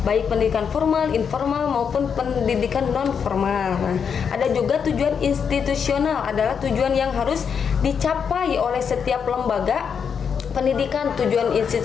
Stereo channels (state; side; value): quieter; right; 6.8 dB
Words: baik pendidikan formal, informal, maupun pendidikan non-formal. Nah, ada juga tujuan institusional, adalah tujuan yang harus dicapai oleh setiap lembaga pendidikan. Tujuan